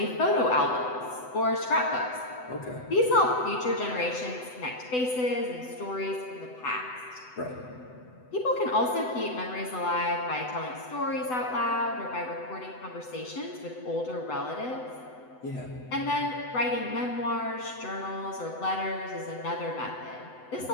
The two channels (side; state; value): right; late; 7.9 ms